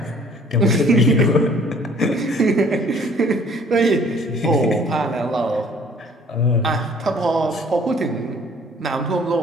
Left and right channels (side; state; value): both; normal; correlation 0.56